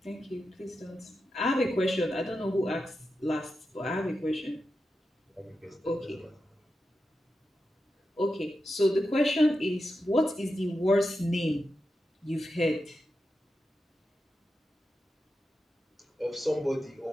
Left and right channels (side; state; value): both; normal; correlation 0.89